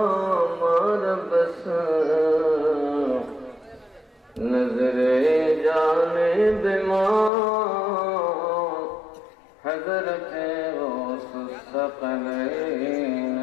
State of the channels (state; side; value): drops out; right; at 7.3 s